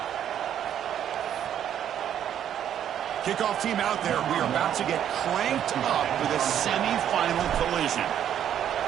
Kickoff team out there. We are about to get cranked up with a semi-final collision.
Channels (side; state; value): left; quieter; 10.0 dB